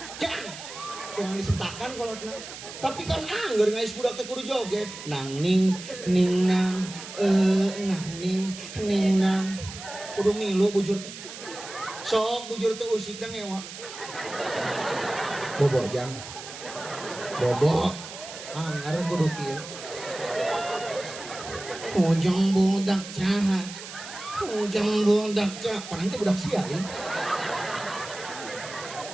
Tuang disentakan kalau tapi kan anggar ngais budak teh kudu joget nang ning nang ning nang kudu milu bujur sok bujur teh usik dan ngewa bobo jang bobo anggar kudu kieu ujang budak caha panang teh budak sia ya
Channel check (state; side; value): noise; right; hiss, 12 dB below the sound